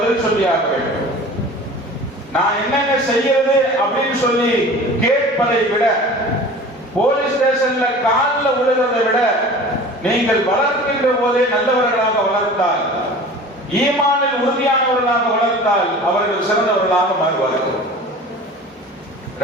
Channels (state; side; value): normal; both; correlation 0.40